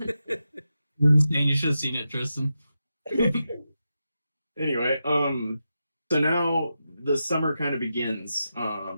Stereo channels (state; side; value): inverted; both; correlation -0.89